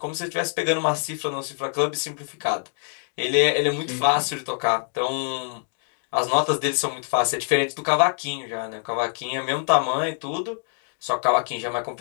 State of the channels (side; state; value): right; silent; 61 dB below the other